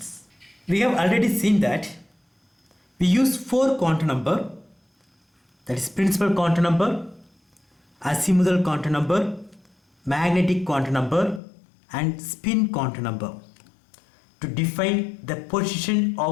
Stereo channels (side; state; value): right; drops out; at 11.4 s